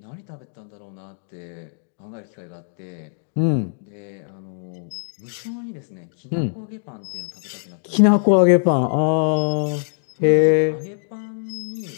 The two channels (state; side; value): silent; right; digital silence